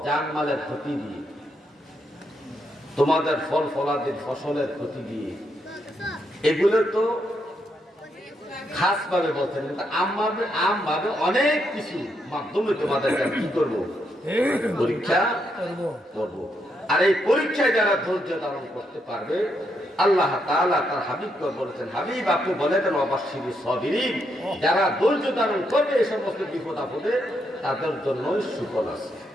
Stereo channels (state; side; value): normal; both; correlation 0.79